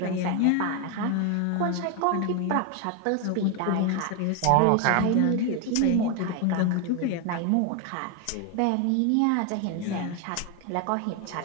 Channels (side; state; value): both; different; correlation 0.01